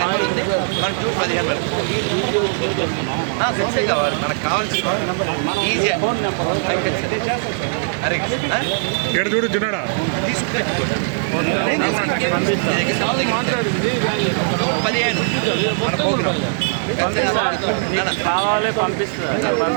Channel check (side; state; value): left; silent; digital silence